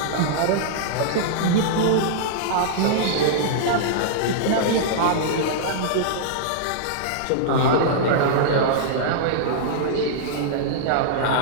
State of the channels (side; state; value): both; different; correlation -0.02